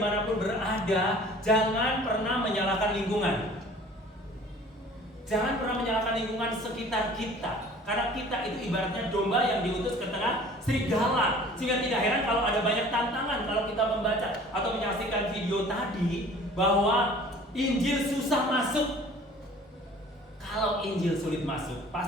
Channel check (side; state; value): both; normal; correlation 0.48